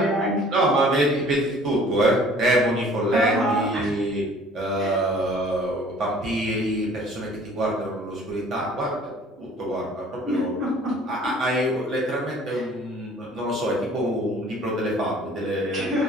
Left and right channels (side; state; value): both; normal; correlation 0.52